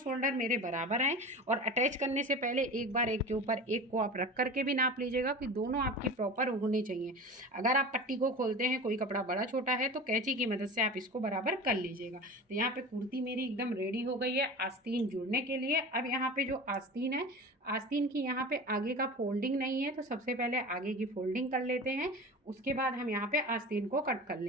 मेरे बराबर हैं। और अटैच करने से पहले एक बार एक के ऊपर एक को आप रख करके भी नाप लीजिएगा कि दोनों आपकी प्रॉपर होनी चाहिए। अगर आप पट्टी को खोलते हैं, कोई कपड़ा बड़ा छोटा है, तो कैंची की मदद से आप इसको बराबर कर लीजिएगा। तो यहाँ पे कुर्ती मेरी एकदम रेडी हो गई है आस्तीन जुड़ने के लिए। अब यहाँ पे जो आस्तीन है, आस्तीन की यहाँ पे आगे का फोल्डिंग नहीं है, तो सबसे पहले आगे की फोल्डिंग कर लेते हैं, उसके बाद हम यहाँ पे आस्तीन को कट कर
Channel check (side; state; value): both; normal; correlation 0.33